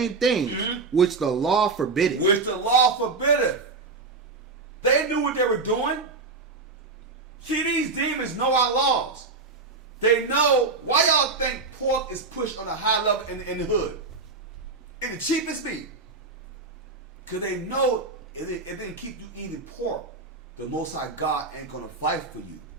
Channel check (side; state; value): left; quieter; 3.9 dB